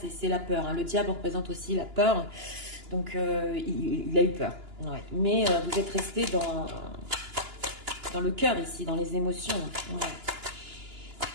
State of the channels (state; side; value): late; left; 2.9 ms